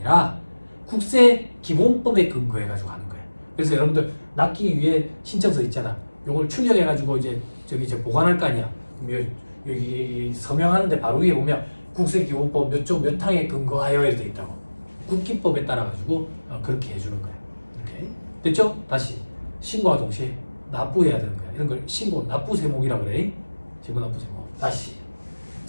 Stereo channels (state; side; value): inverted; both; correlation -1.00